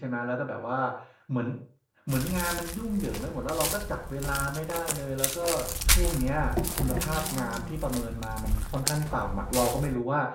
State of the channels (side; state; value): both; identical; correlation 1.00